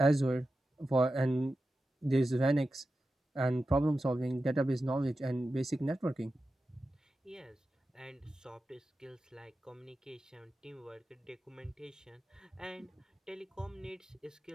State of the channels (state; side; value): normal; both; correlation 0.92